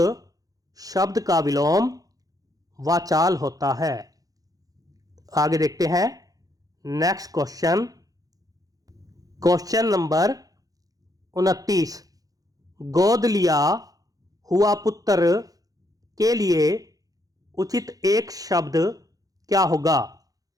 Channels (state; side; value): late; left; 0.17 ms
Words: शब्द का विलोम वाचाल होता है। आगे देखते हैं नेक्स्ट क्वेश्चन, क्वेश्चन नंबर 29। गोद लिया हुआ पुत्र के लिए उचित एक शब्द क्या होगा?